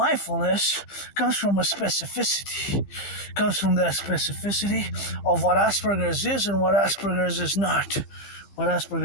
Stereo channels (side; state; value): right; late; 15 ms